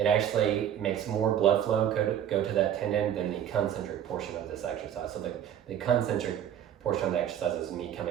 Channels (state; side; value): quieter; left; 10.0 dB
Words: actually makes more blood flow go to that tendon than the concentric portion of this exercise. So the concentric portion of the exercise is me